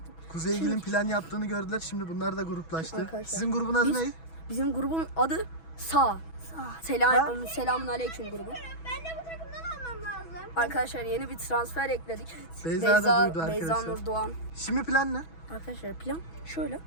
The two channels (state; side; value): late; right; 6.1 ms